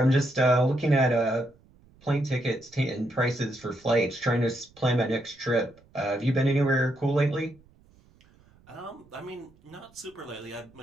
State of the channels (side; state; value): right; noise; rumble, 29 dB below the sound